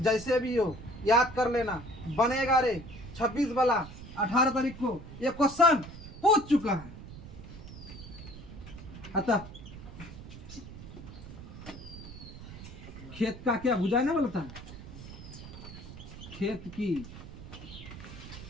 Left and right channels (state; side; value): noise; right; rumble, 13 dB below the sound